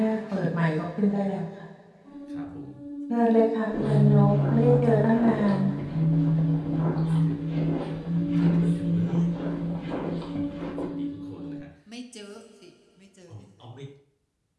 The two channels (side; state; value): both; identical; correlation 1.00